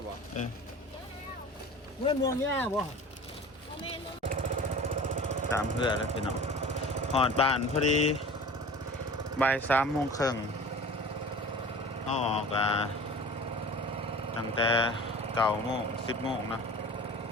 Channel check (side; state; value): both; normal; correlation 0.40